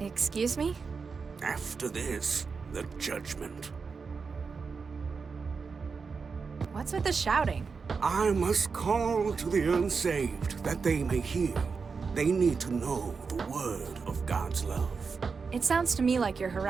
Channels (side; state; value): left; quieter; 5.1 dB